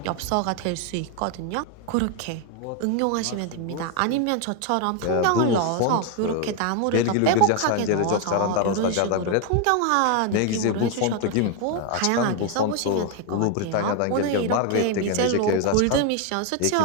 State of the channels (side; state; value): both; different; correlation 0.01